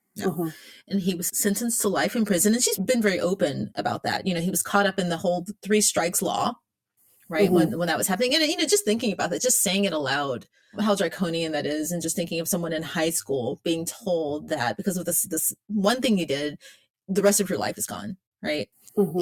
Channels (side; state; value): both; identical; correlation 1.00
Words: And he was sentenced to life in prison. And she's been very open about that. He was caught up in the whole 3 strikes law, right? When that was happening. And, just thinking about that, just saying it aloud, how draconian that is. And just thinking of someone in high school being told that because of this one thing you did, the rest of your life is gone, right?